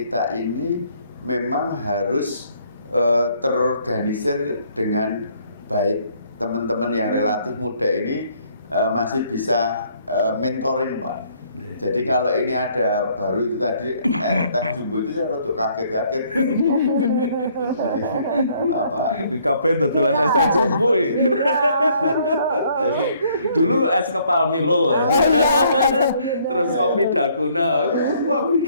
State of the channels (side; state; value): both; inverted; correlation -0.64